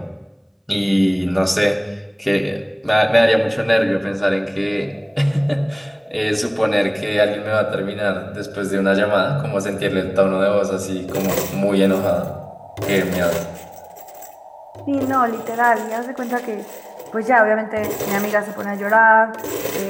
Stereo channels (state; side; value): identical; both; correlation 1.00